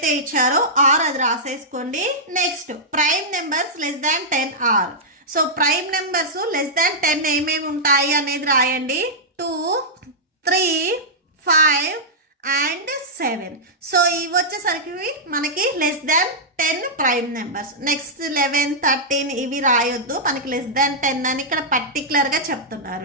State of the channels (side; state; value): both; normal; correlation -0.10